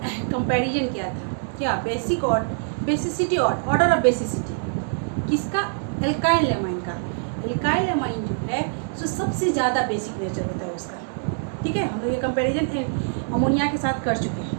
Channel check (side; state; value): left; silent; digital silence